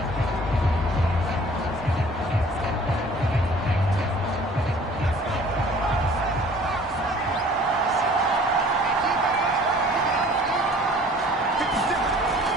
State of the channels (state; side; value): normal; both; correlation 0.51